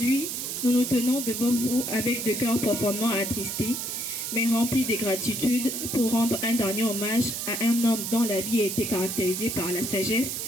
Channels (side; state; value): right; noise; hiss, 4 dB below the sound